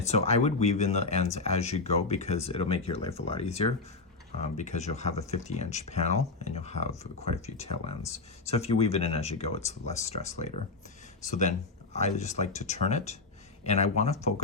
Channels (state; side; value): quieter; right; 3.8 dB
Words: so I would weave in the ends as you go, because it'll make your life a lot easier. Because you'll have a 50-inch panel and you'll have quite a few tail ends. So if you weave it in as you go, it's less stress later. So then I just like to turn it, and I want to